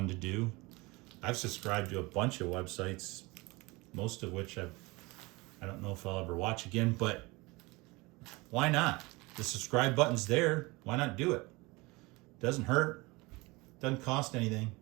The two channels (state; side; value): quieter; left; 23.9 dB